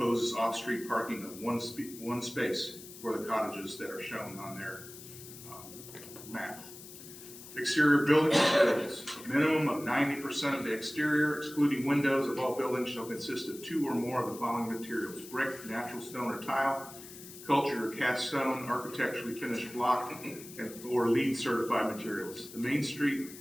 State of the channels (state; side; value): noise; left; hiss, 15 dB below the sound